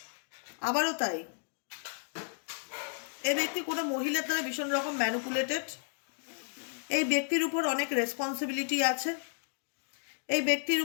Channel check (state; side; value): silent; right; digital silence